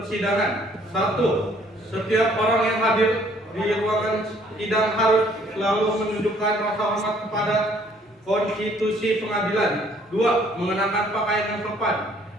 1. Setiap orang yang hadir di ruangan sidang harus selalu menunjukkan rasa hormat kepada konstitusi pengadilan. 2. Mengenakan pakaian yang sopan.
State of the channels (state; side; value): normal; both; correlation 0.61